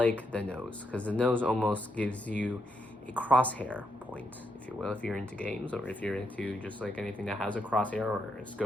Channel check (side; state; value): both; normal; correlation 0.80